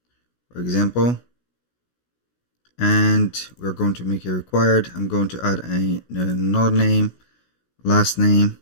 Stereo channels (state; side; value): late; right; 16 ms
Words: for example, and we're going to make it required. I'm going to add another name, last name,